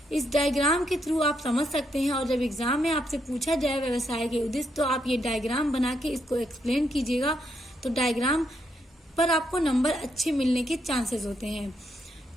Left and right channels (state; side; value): normal; both; correlation 0.78